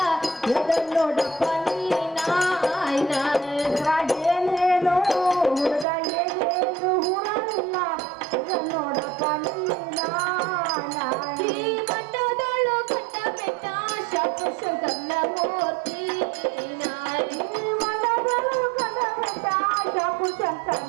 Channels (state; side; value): drops out; left; at 5.9 s